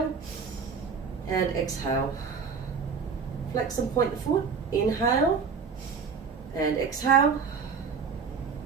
and exhale. Flex and point the foot. Inhale and exhale.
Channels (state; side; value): quieter; left; 5.7 dB